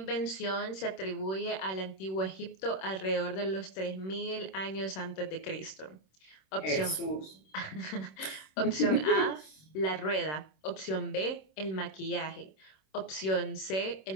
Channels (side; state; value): right; late; 26 ms